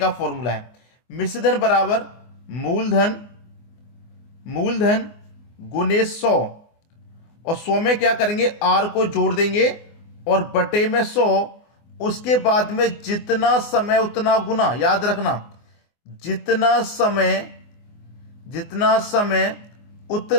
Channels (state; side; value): late; right; 24 ms